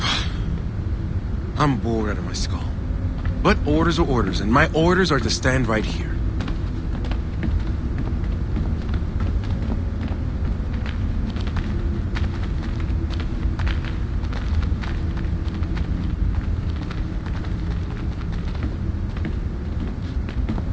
I'm bored out of my skull. But orders are orders, and my orders are to stand right here.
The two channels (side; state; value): both; identical; correlation 1.00